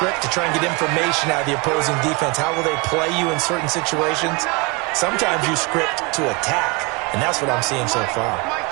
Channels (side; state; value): left; quieter; 27.3 dB